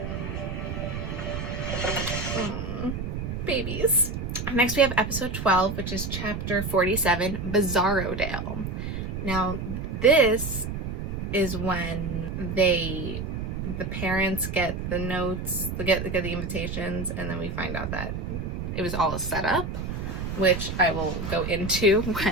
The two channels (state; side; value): noise; right; rumble, 4 dB below the sound